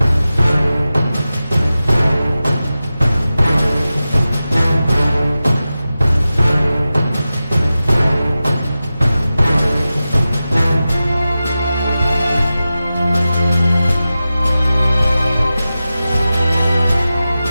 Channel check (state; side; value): inverted; both; correlation -0.94